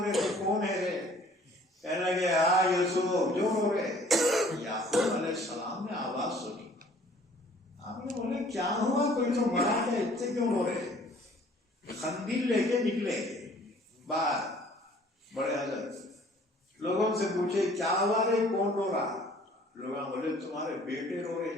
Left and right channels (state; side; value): normal; both; correlation 0.55